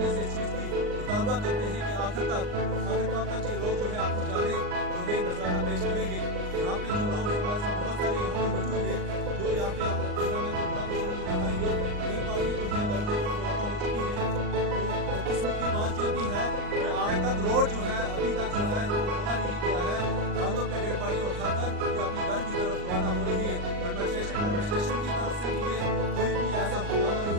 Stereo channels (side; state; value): left; late; 39 ms